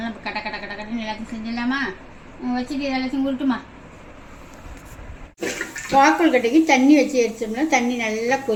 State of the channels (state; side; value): identical; both; correlation 1.00